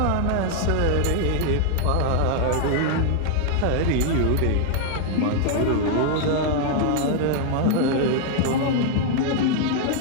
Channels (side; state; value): both; different; correlation 0.00